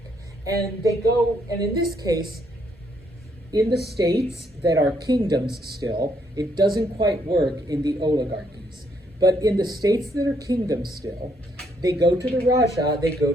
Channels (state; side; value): normal; both; correlation 0.72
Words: And they go, and in this case, in the states that are kingdoms still, it doesn't quite work in the oligarchies. But in the states that are kingdoms still, they go to the Raja, they go